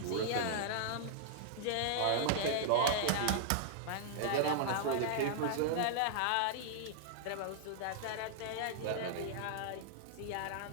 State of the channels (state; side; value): different; both; correlation -0.01